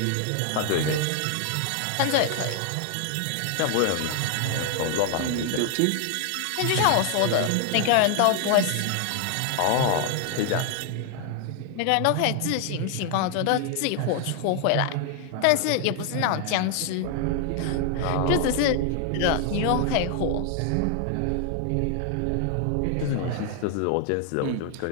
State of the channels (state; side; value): different; both; correlation 0.00